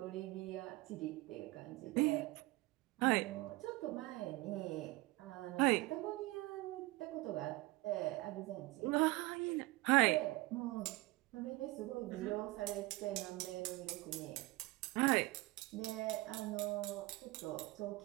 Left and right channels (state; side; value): quieter; left; 21.0 dB